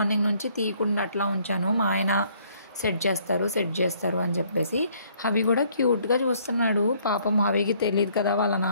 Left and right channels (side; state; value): both; inverted; correlation -0.63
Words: నుంచి తీయకుండా అట్లా ఉంచాను. మా ఆయన సెట్ చేస్తారు అని చెప్పేసి. హవి కూడా క్యూట్గా చూస్తున్నాడు. పాపం హవికి తెలియదు కదా వాళ్ళ